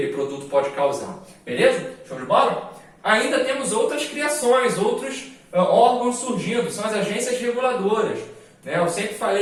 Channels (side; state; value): both; identical; correlation 1.00